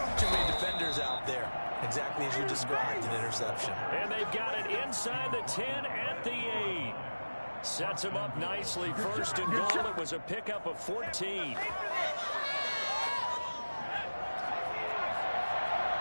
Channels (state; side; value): inverted; both; correlation -1.00